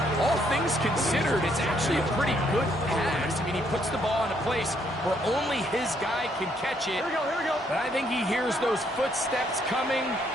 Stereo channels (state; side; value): normal; both; correlation 0.71